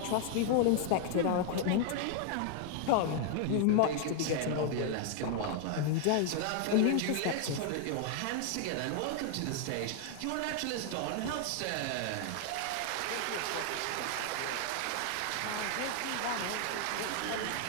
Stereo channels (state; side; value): different; both; correlation 0.00